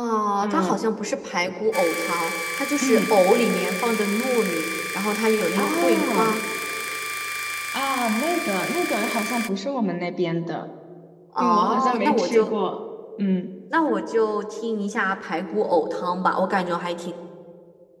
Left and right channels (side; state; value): both; identical; correlation 1.00